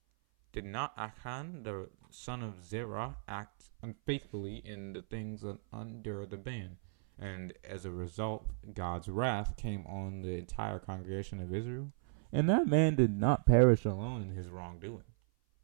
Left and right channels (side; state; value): left; silent; 53 dB below the other